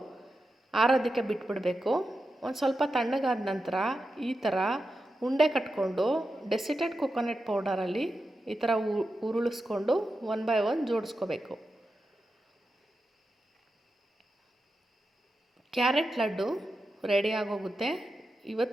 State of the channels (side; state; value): both; normal; correlation 0.89